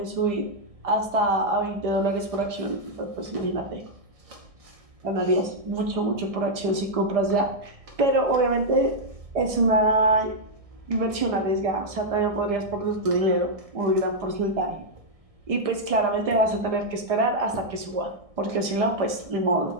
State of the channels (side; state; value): left; late; 1.6 ms